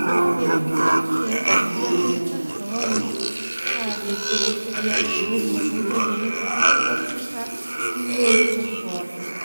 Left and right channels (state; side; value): inverted; both; correlation -1.00